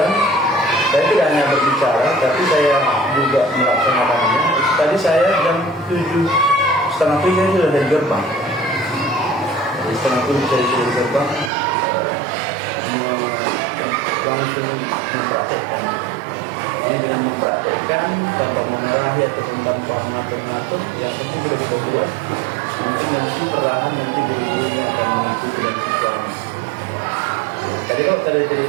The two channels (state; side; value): drops out; left; at 11.5 s